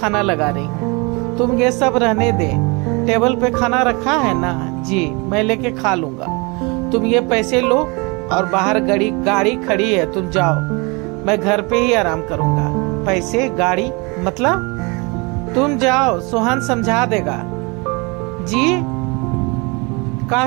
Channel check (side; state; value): left; quieter; 28.8 dB